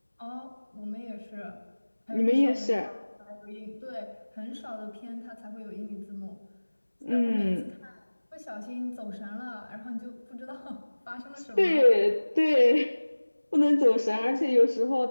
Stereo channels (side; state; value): both; inverted; correlation -1.00